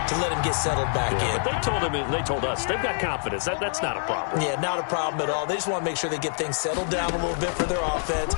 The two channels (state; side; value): silent; right; digital silence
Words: to let him get settled back in. But they told us they've got confidence. That's not a problem. Yeah, not a problem at all. They just want to make sure they get things settled down a little bit for their offense